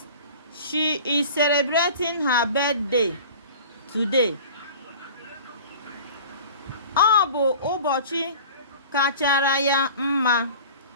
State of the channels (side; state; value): both; inverted; correlation -0.41